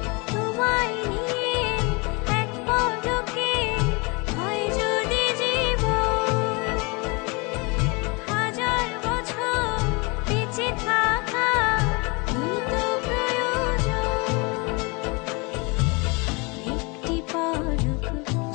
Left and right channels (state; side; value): quieter; right; 29.1 dB